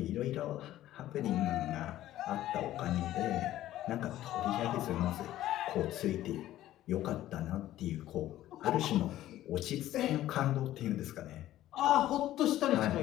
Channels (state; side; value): quieter; right; 13.9 dB